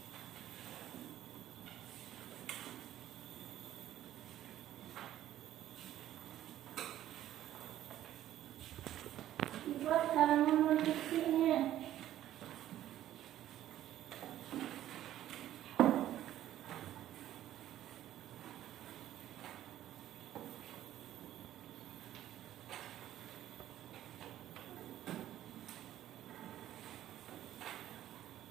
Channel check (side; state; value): left; quieter; 12.7 dB